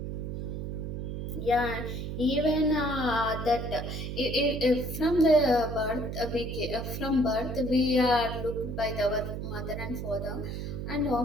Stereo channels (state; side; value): noise; right; hum, 5 dB below the sound